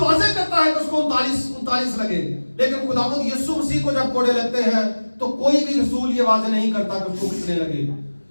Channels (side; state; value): both; inverted; correlation -1.00